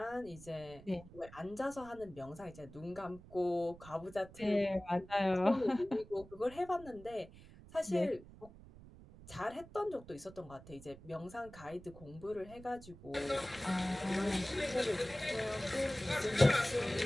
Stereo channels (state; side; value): noise; right; rumble, 19 dB below the sound